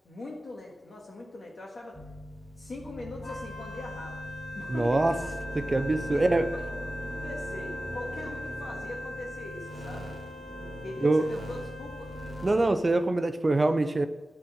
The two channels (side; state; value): both; normal; correlation 0.95